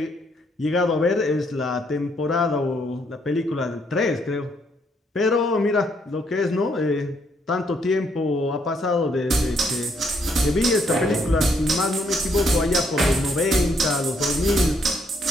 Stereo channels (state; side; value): normal; both; correlation 0.72